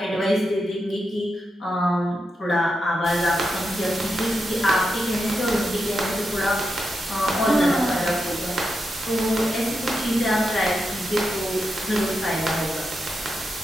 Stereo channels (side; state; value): both; normal; correlation 0.87